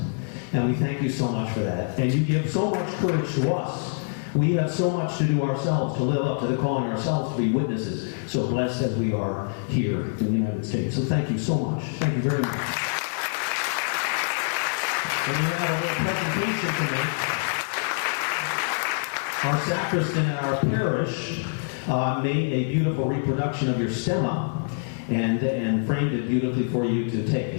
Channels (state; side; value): silent; right; 61 dB below the other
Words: And we thank you so much for that. And you give so much courage to us. We have so much to do ourselves, to live up to the calling ourselves to be witnesses. So blessed as we are here in the United States. So thank you so much. Thank you very much. And we have a little presentation today. Our sacristan at our parish made a beautiful reproduction of your stemma and framed it beautifully for you to take